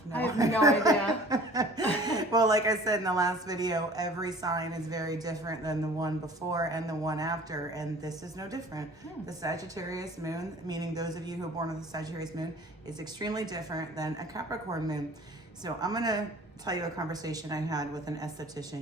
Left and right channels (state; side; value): normal; both; correlation 0.47